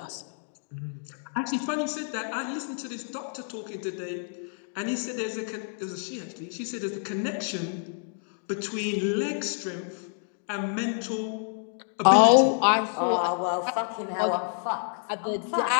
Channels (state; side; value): silent; right; 59 dB below the other